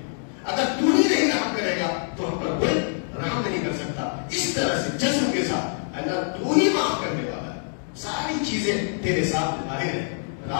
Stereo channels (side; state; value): right; silent; digital silence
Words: اگر تو ہی نہیں رحم کرے گا تو ہم پر کوئی رحم نہیں کر سکتا. اس طرح سے جذب کے ساتھ اللہ تو ہی معاف کرنے والا ہے. ساری چیزیں تیرے سامنے ظاہر ہیں,